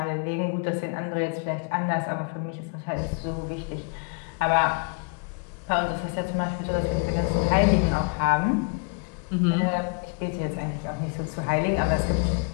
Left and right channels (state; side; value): quieter; right; 36.2 dB